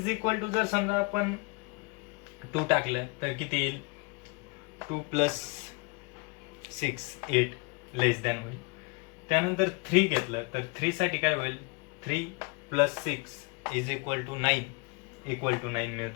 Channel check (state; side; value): quieter; right; 30.3 dB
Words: इक्वल टू जर समजा आपण 2 टाकलं तर किती येईल, 2 + 6 8 लेस दॅन होईल. त्यानंतर 3 घेतलं तर 3 साठी काय होईल, 3 + 6 is equal to 9 equal to 9